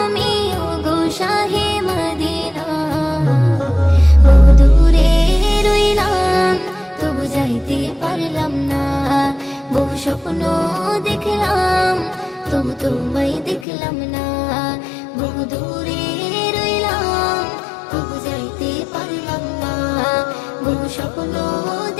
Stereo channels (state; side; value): drops out; right; at 13.7 s